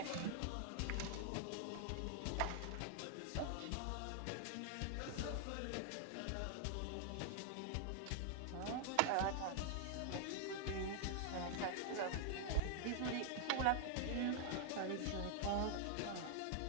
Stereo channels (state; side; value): different; both; correlation 0.00